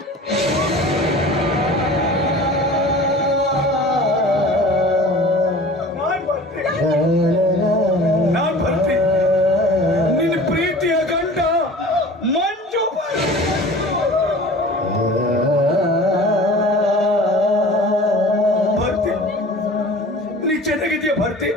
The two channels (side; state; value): both; normal; correlation 0.42